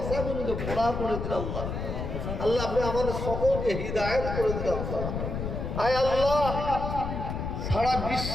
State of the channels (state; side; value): noise; left; rumble, 4 dB below the sound